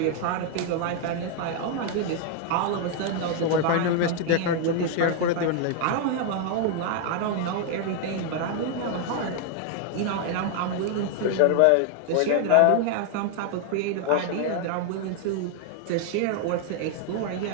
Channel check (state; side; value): different; both; correlation 0.00